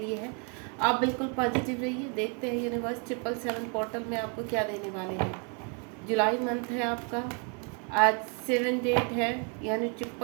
है। आप बिल्कुल पॉजिटिव रहिए। देखते हैं यूनिवर्स 777 पोर्टल में आपको क्या देने वाले हैं। जुलाई मंथ है आपका, आज 7 डेट है, यानी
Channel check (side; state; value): left; quieter; 37.3 dB